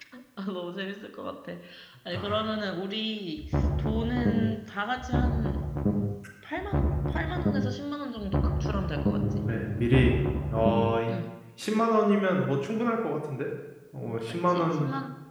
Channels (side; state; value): both; identical; correlation 1.00